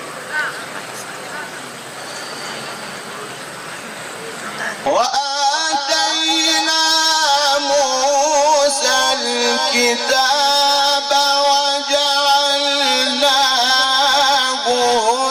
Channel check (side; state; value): both; identical; correlation 1.00